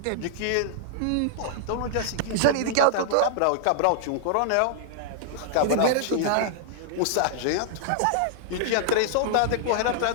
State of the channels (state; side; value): different; both; correlation -0.01